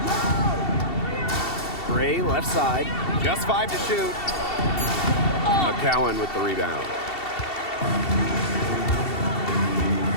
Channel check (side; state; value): right; late; 2.7 ms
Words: Gray left side. Just 5 to shoot. McCowan with the rebound.